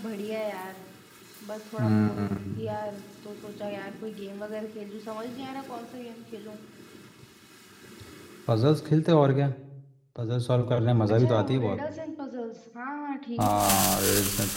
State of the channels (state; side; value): identical; both; correlation 1.00